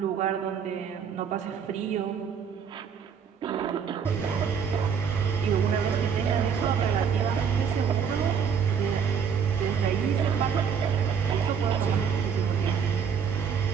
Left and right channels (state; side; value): quieter; left; 7.0 dB